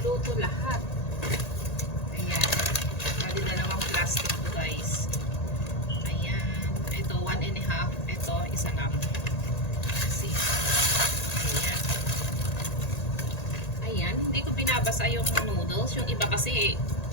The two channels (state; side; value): late; right; 1.8 ms